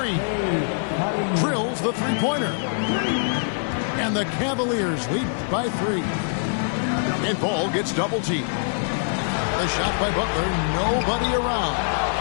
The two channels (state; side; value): silent; right; digital silence